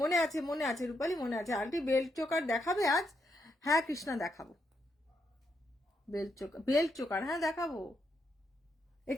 মনে আছে রূপালি, মনে আছে। আন্টি বেল্ট চোকার দেখাবে আজ? হ্যাঁ কৃষ্ণা দেখাবো, বেল্ট চোকার হ্যাঁ দেখাবো।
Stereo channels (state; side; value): normal; both; correlation 0.79